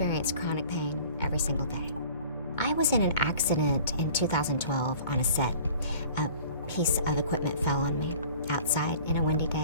chronic pain every single day. I was in an accident in 2012 on a set. A piece of equipment fell on me outside in a windy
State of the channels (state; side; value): inverted; both; correlation -0.47